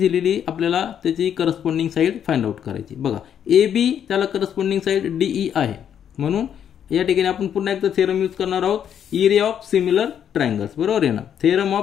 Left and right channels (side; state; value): right; quieter; 9.0 dB